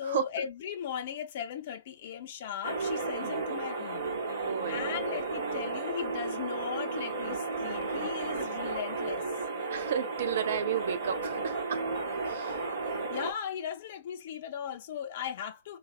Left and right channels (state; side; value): inverted; both; correlation -0.52